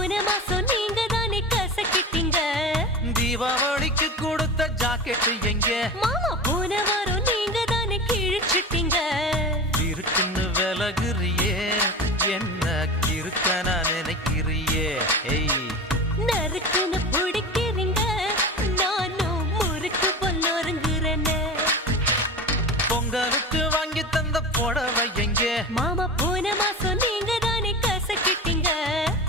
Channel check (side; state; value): both; normal; correlation 0.29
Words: மாசம் நீங்க தானே கசக்கிட்டீங்க தீபாவளிக்கு கொடுத்த ஜாக்கெட் எங்க மாமா போன வாரம் நீங்க தானே கிழிச்சிட்டீங்க இருக்குன்னு விலகுறியே என்ன கிறுக்கன நினைக்கிறியே ஏய் நறுக்குன்னு பிடிக்கிறீங்க நானும் முறுக்கு பொல்லொருங்குறேன்னு பொங்கலுக்கு வாங்கி தந்த புடவை எங்க மாமா போன மாசம் நீங்க தானே கசக்கிட்டீங்க